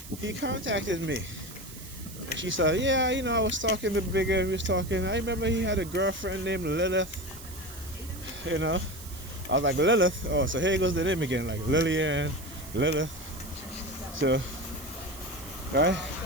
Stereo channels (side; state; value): right; noise; hiss, 15 dB below the sound